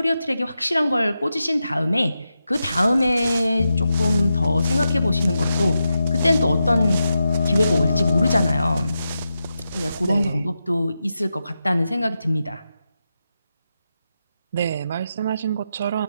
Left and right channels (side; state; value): both; inverted; correlation -0.88